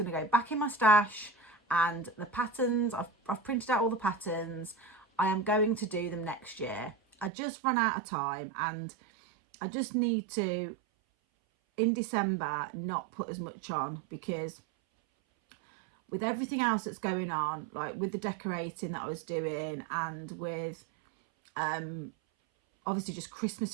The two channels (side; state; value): left; drops out; at 7.3 s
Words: to go back in my stash, and the patterns, I've printed out all the patterns. I am going to do them next year. I just run out of time, and I just need to, in December, not put as much on, because with everything else that's going on, like with the decorating that I was doing, and with obviously just Christmas